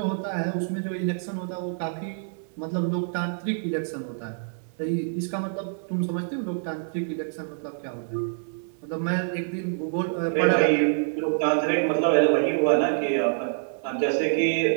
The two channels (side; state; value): left; silent; digital silence